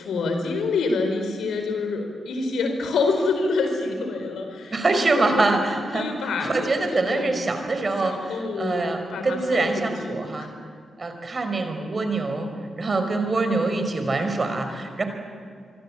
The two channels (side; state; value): both; normal; correlation 0.83